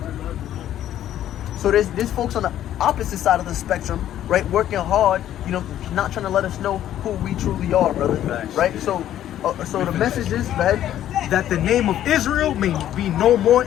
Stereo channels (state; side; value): quieter; right; 11.8 dB